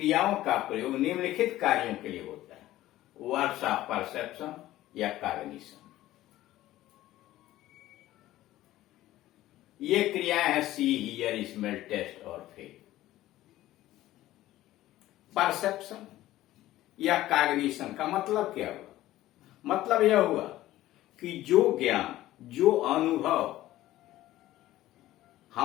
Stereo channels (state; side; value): quieter; right; 15.2 dB